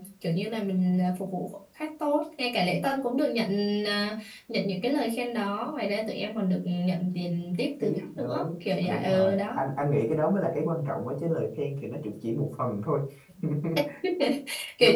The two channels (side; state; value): both; identical; correlation 1.00